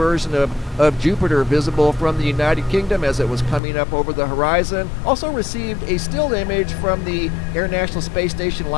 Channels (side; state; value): right; drops out; at 3.6 s